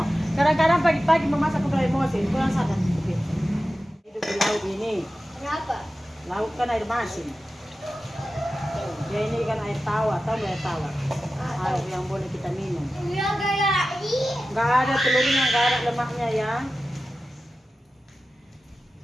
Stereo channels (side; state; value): both; normal; correlation 0.94